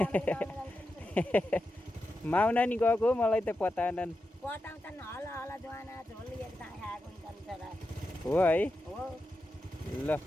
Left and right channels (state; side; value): normal; both; correlation 0.89